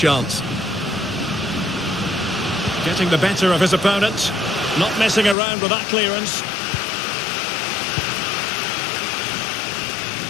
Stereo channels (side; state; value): right; drops out; at 5.4 s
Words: Getting the better of his opponent, not messing around with that clearance.